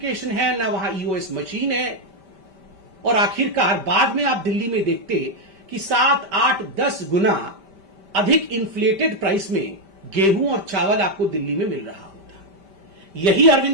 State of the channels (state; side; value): late; left; 5.1 ms